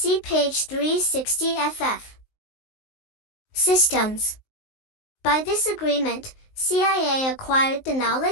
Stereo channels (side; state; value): right; late; 19 ms